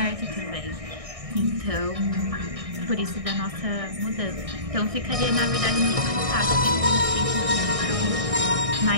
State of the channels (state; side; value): late; left; 1.6 ms